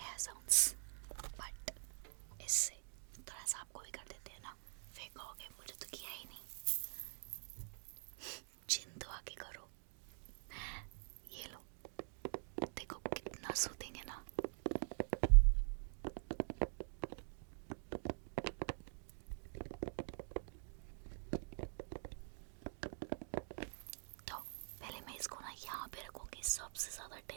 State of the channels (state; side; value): silent; left; digital silence